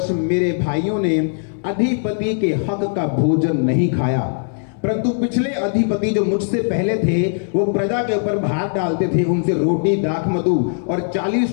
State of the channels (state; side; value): silent; right; digital silence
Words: मेरे भाइयों ने अधिपति के हक का भोजन नहीं खाया, परंतु पिछले अधिपति जो मुझसे पहले थे वो प्रजा के ऊपर भार डालते थे, उनसे रोटी दाख मधु और